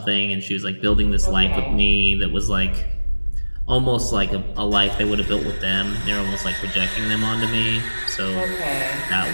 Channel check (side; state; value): both; inverted; correlation -1.00